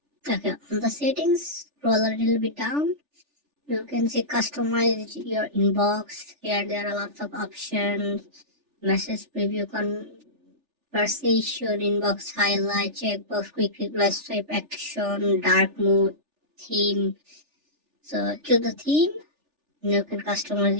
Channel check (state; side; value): late; left; 3.4 ms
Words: Okay, on the settings, scroll a little bit down. You can see customize your inbox. Here there are lots of options. Message preview, conversation, inbox highlight, checkbox, quick reply, swipe action, dark mode, theme. So choose the theme. You can customize